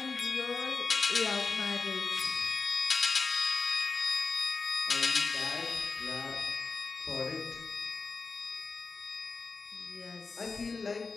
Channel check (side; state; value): right; quieter; 4.4 dB